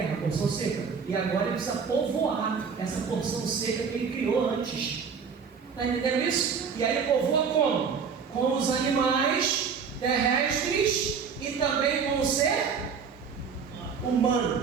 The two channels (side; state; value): left; quieter; 6.1 dB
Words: a porção seca, e agora ele precisa povoar essa porção seca que ele criou antes. Está entendendo isso? E aí ele povoa como? Com os animais terrestres e também com o ser